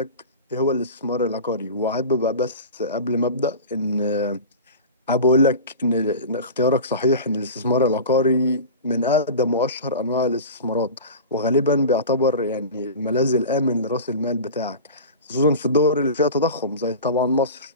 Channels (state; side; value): inverted; both; correlation -0.32